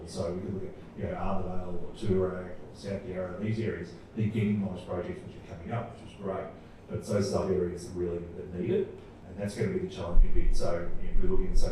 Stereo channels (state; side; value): identical; both; correlation 1.00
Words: So we can look at Arthurdale or Toorak or South Yarra, these areas. They're getting nice projects which are coming up, which is great. But it's those other areas that need it, and that's going to be the challenging bit. So if we're looking